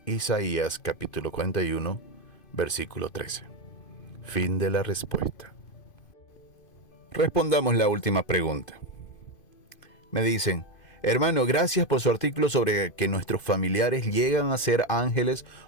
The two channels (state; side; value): late; right; 2.5 ms